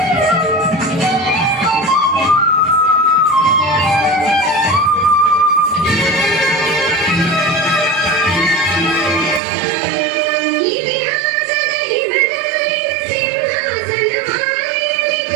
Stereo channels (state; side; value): drops out; left; at 9.4 s